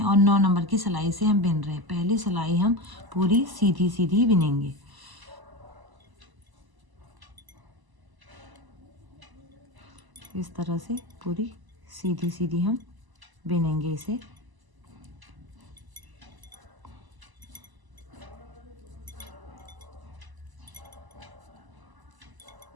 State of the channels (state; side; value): late; left; 1.0 ms